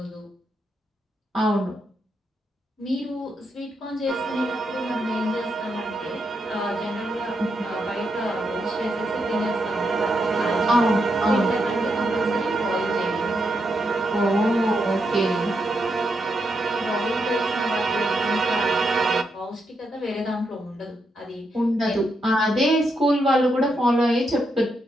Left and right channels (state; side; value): normal; both; correlation 0.82